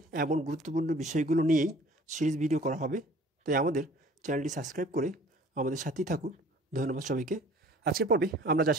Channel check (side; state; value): both; normal; correlation 0.51